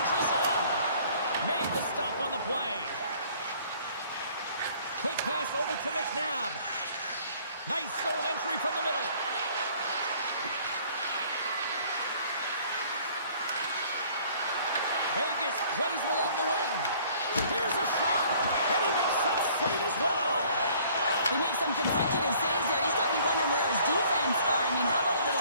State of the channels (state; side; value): inverted; both; correlation -0.56